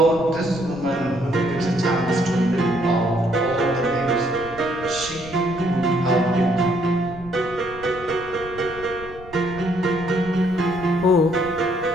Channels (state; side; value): noise; right; rumble, 18 dB below the sound